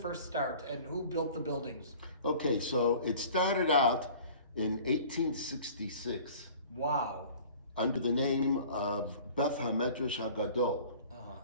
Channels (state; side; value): inverted; both; correlation -0.46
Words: start, and who built the buildings? Okay, so it started out in 1866. Wow. Under the name of Beth HaMedrash HaGadol.